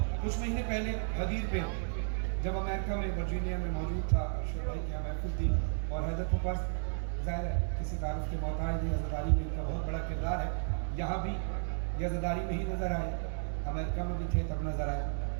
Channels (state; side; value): silent; left; digital silence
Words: कुछ महीने पहले गदीर पे जब अमेरिका में वर्जीनिया में मौजूद था, अरशद भाई की यहाँ महफिल थी और हैदर के पास ज़ाहिर है किसी तारुफ के मोहताज नहीं, अज़ादारी में इनका बहुत बड़ा किरदार है। यहाँ भी ये अज़ादारी में ही नज़र आए, अमेरिका में भी थे तब नज़र आए।